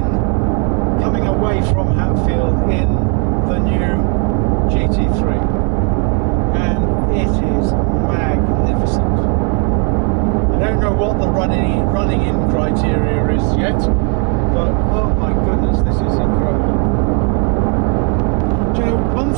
away from Hatfield in the new GT3, and it is magnificent. I don't know what the running in criteria is yet, but oh my goodness, this is incredible. Do you know, one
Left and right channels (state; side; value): quieter; left; 38.3 dB